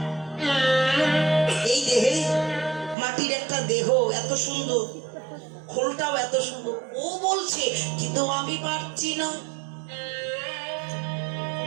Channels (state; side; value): drops out; left; at 3.0 s